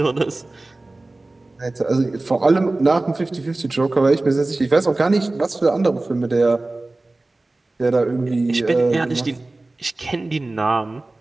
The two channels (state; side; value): quieter; left; 3.0 dB